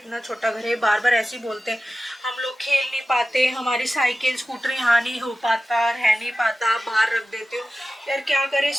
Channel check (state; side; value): normal; both; correlation 0.94